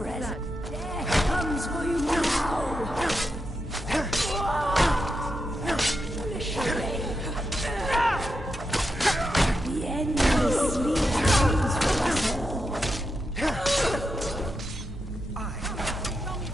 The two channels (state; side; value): normal; both; correlation 0.86